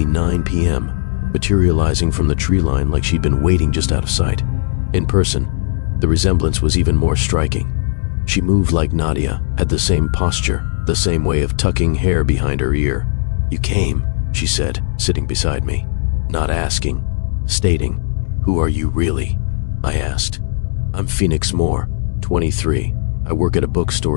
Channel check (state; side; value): silent; right; digital silence